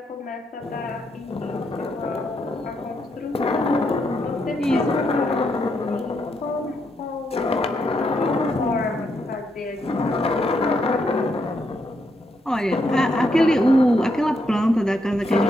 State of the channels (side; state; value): both; normal; correlation 0.78